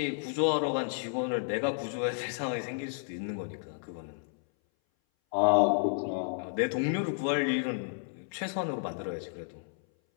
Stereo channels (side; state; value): right; silent; 57 dB below the other